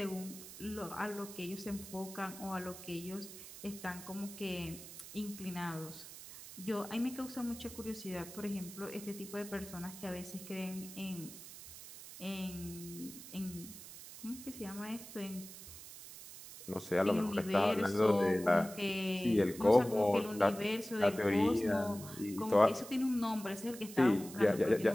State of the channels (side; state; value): right; noise; hiss, 14 dB below the sound